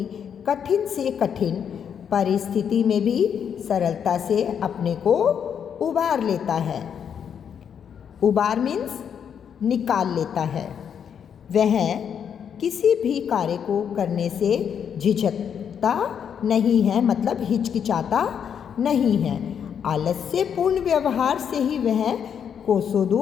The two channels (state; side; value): quieter; right; 7.9 dB